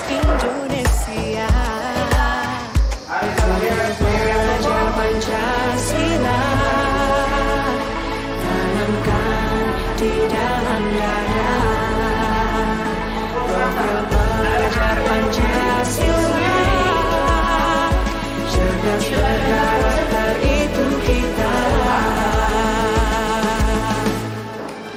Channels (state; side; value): identical; both; correlation 1.00